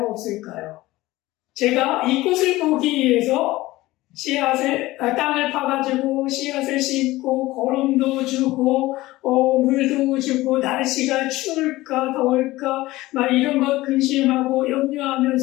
없을까요? 제가 이 꽃을 보기 위해서 땅을 파가지고 씨앗을 심고 거름도 주고 물도 주고 날씨가 추울까 더울까 막 이런 것 근심하고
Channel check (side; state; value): right; quieter; 18.2 dB